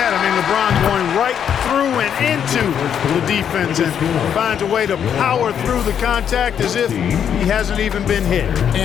I mean, LeBron going right through and into the defense and finds a way to power through the contact as if he hasn't even been hit.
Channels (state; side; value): quieter; right; 8.5 dB